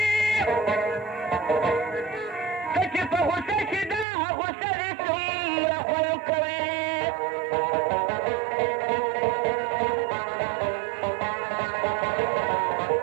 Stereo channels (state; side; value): drops out; left; at 4.0 s